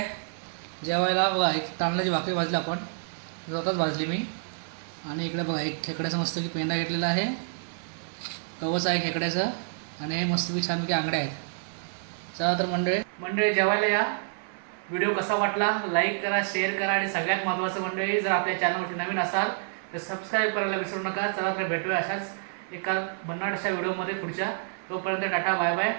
जेवायला. बघा एक तांदळाची भाकरी भाजली आपण, स्वतःच भाजली मी. आणि इकडे बघा एक खेकड्याचा मस्त की पेंडा घेतलेला आहे, कवच आहे खेकड्याचं. आणि हे मस्तपैकी छानपैकी आंगड्या आहेत. चला तर मंडळी जेवायला या. व्हिडिओ कसा वाटला लाईक करा, शेअर करा आणि सगळ्यात महत्त्वाचं मंडळी जर आपल्या चॅनलवरती नवीन असाल तर सबस्क्राईब करायला विसरू नका. चला तर भेटूया अशाच एका भन्नाट अशा व्हिडिओमध्ये पुढच्या. तोपर्यंत टाटा बाय बाय.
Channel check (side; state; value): left; silent; 57 dB below the other